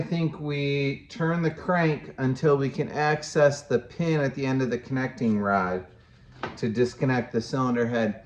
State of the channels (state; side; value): identical; both; correlation 1.00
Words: think we turn the crank until we can access the pin at the end of the connecting rod to disconnect the cylinder head.